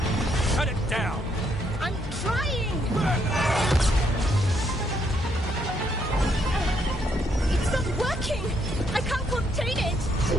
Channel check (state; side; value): normal; both; correlation 0.73